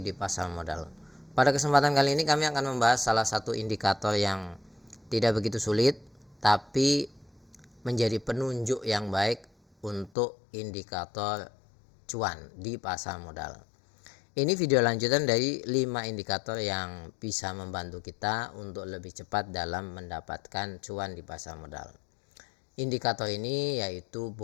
di pasar modal. Pada kesempatan kali ini kami akan membahas salah satu indikator yang tidak begitu sulit, tapi menjadi penunjuk yang baik untuk indikator cuan di pasar modal. Ini video lanjutan dari 5 indikator yang bisa membantu kita untuk lebih cepat dalam mendapatkan cuan di pasar modal. Indikator ini yaitu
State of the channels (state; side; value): drops out; right; at 10.1 s